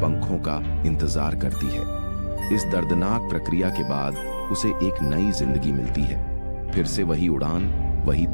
पंखों का इंतजार करती है। इस दर्दनाक प्रक्रिया के बाद उसे एक नई जिंदगी मिलती है। फिर से वही उड़ान, वही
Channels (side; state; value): both; inverted; correlation -1.00